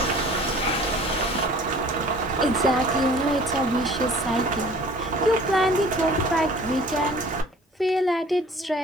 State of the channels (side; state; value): both; normal; correlation 0.49